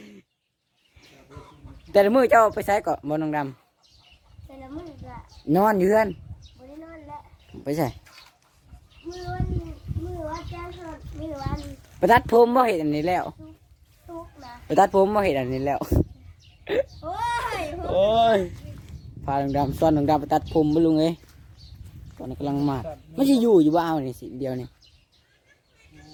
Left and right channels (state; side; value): identical; both; correlation 1.00